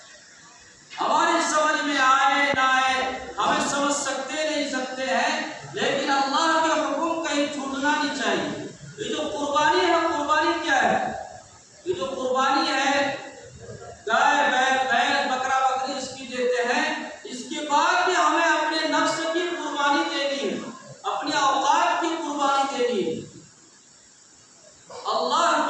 ہماری سمجھ میں آئے نہ آئے، ہمیں سمجھ سکتے نہیں سکتے ہیں، لیکن اللہ کے حکم کہیں چھوٹنا نہیں چاہیے۔ یہ جو قربانی ہے، قربانی کیا ہے؟ یہ جو قربانی ہے، گائے بیل بکرا بکری اس کی دیتے ہیں، اس کے بعد بھی ہمیں اپنے نفس کی قربانی دینی ہے، اپنے اوقات کی قربانی دینی ہے۔ اللہ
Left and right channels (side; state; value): both; identical; correlation 1.00